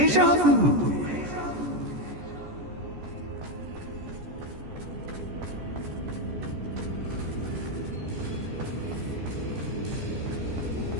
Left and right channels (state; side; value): late; left; 14 ms